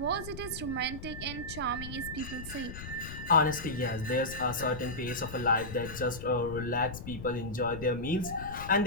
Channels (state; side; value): noise; left; rumble, 10 dB below the sound